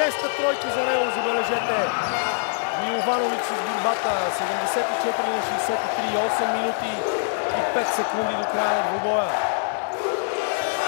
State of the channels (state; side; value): silent; right; digital silence